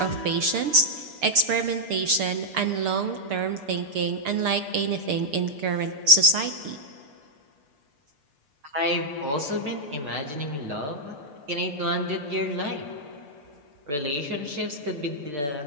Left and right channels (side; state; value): left; late; 6.8 ms